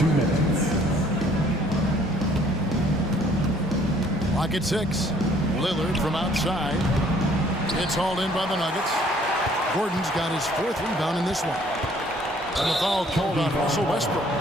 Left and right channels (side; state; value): both; normal; correlation 0.60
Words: minutes. Clock at 6. Lillard from outside. It's hauled in by the Nuggets. Gordon's got his 4th rebound in this one. And the foul called on Russell Westbrook.